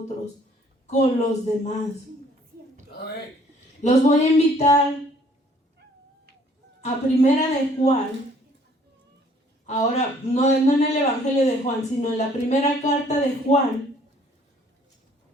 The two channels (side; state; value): both; normal; correlation 0.59